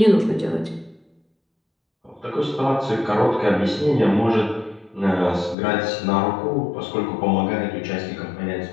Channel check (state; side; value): drops out; right; at 5.6 s